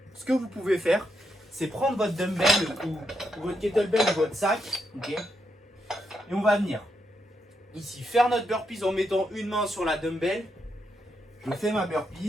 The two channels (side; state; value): both; normal; correlation 0.81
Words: ce que vous pouvez faire, c'est prendre votre dumbbell ou votre kettlebell ou votre sac, okay, et on va venir ici faire notre burpees en mettant une main sur la dumbbell. Je fais ma